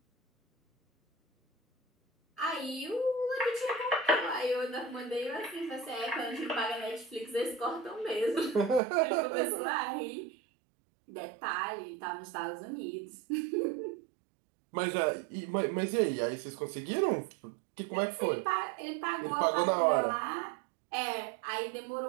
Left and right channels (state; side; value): drops out; left; at 8.8 s